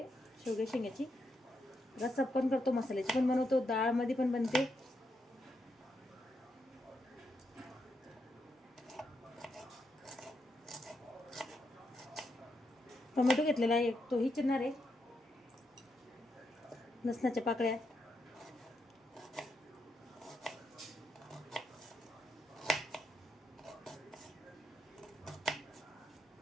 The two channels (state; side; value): normal; both; correlation 0.82